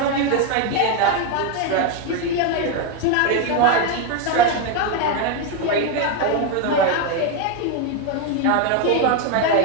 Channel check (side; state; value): both; different; correlation 0.02